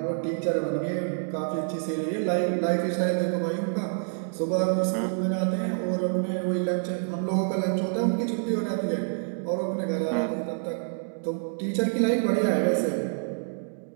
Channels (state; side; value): silent; left; digital silence